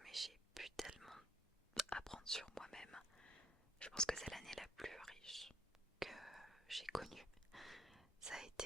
mais j'ai pu tellement apprendre sur moi-même. Je pense que c'est l'année la plus riche que j'ai connue. Ça a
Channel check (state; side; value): normal; both; correlation 0.67